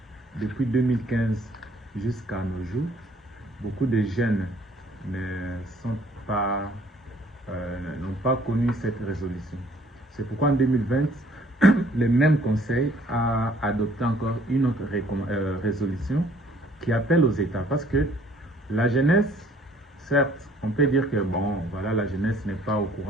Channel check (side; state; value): both; normal; correlation 0.59